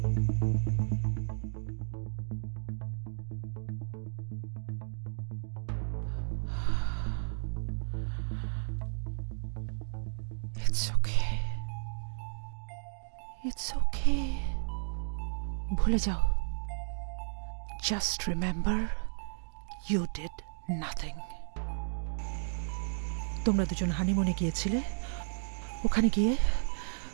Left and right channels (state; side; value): silent; left; digital silence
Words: ইটস ওকে, ভুলে যাও। Just remember you did nothing. তোমরা দুজন হানিমুনে গিয়েছিলে, ওখানে গিয়ে